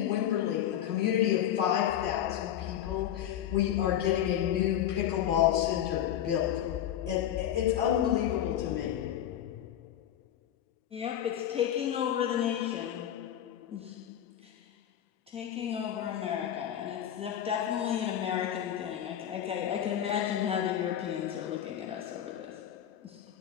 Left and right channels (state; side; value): quieter; right; 10.8 dB